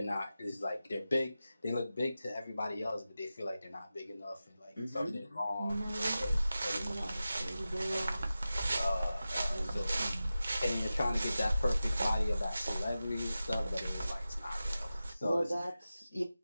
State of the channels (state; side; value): inverted; both; correlation -0.94